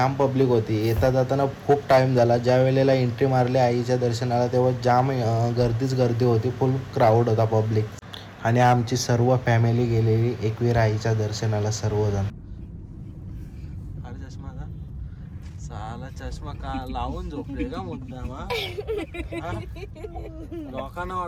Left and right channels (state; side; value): identical; both; correlation 1.00